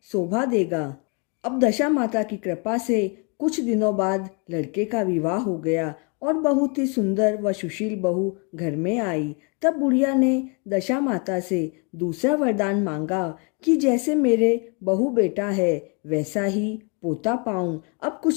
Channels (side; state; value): right; quieter; 34.9 dB